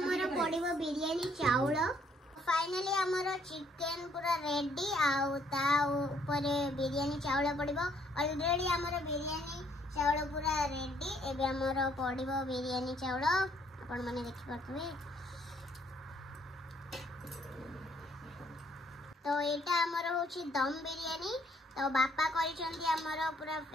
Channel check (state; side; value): normal; both; correlation 0.66